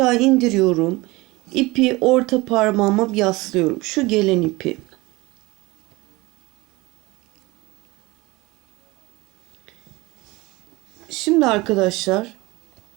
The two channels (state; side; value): quieter; left; 22.1 dB